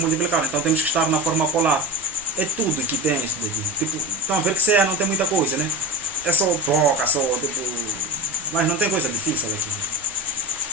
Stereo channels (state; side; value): normal; both; correlation 0.30